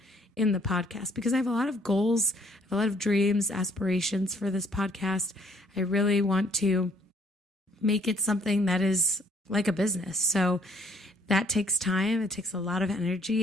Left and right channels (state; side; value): normal; both; correlation 0.62